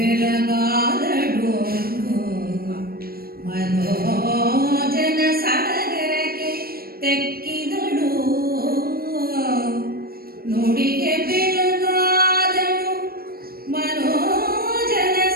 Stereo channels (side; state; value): left; late; 0.44 ms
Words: ಮನೋಜನ ಸಡಗರಕ್ಕೆ ತೆಕ್ಕಿದಳು. ನುಡಿಗೆ ಬೆಳಗಾದಳು ಮನೋಜನ